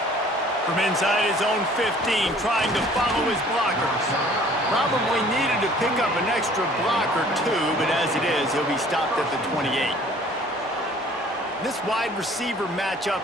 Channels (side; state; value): both; normal; correlation 0.53